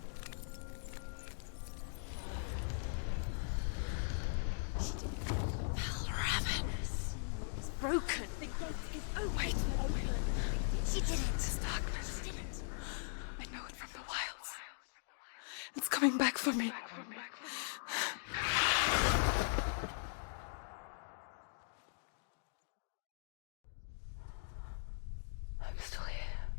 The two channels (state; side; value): silent; right; digital silence